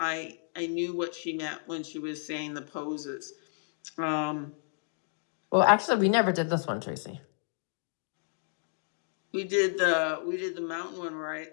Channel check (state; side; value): silent; right; digital silence